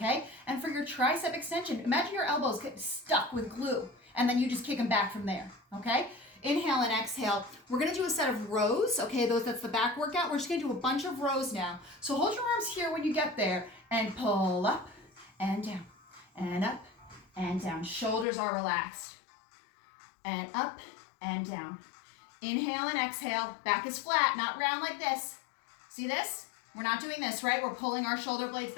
And for your tricep extension, imagine your elbows get stuck with glue, and then you just kick them back from there, okay? Inhale and exhale. We're gonna do a set of rows, okay? That's the back workout. We're just gonna do a bunch of rows now. So hold your arms here when you get there, and pull up and down, and up and down. Shoulders are relaxed, and up and down. Inhale and exhale. Back is flat, not round like this. See this? We're not doing this, right? We're pulling our shoulder blades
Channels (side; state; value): right; drops out; at 18.2 s